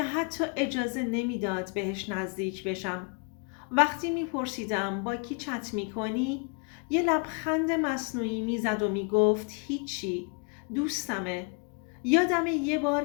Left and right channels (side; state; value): right; quieter; 33.2 dB